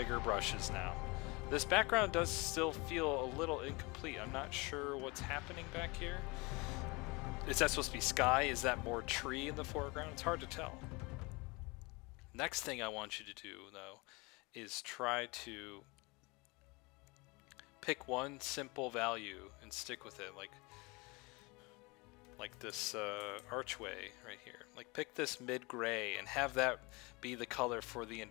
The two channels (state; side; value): quieter; right; 26.2 dB